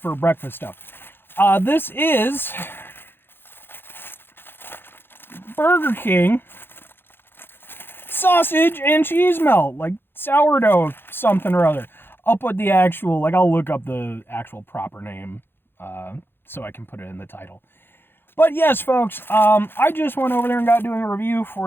breakfast stuff. This is Burger King sausage and cheese melt, like sourdough something or other. I'll put the actual, I'll look up the actual proper name so I can put it in the title. But yes, folks, I just went over there and got doing a review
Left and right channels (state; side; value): late; right; 0.10 ms